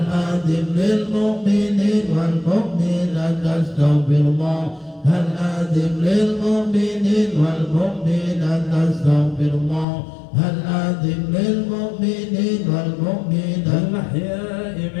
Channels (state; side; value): drops out; right; at 9.9 s